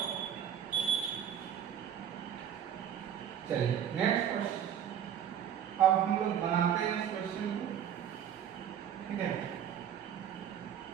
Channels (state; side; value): quieter; left; 9.4 dB